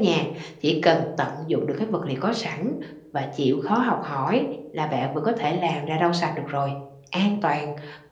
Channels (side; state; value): both; identical; correlation 1.00